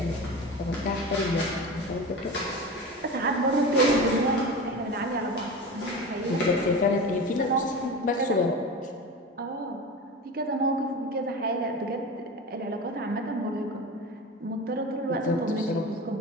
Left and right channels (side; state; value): both; normal; correlation 0.29